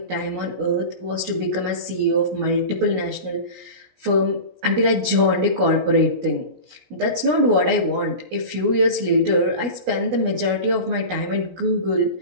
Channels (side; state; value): left; late; 16 ms